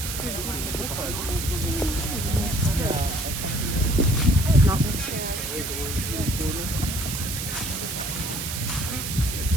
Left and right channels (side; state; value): right; noise; hiss, 5 dB below the sound